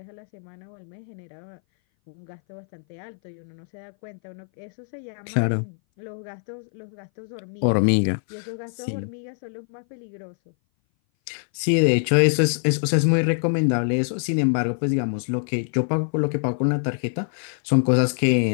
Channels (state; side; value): silent; right; 59 dB below the other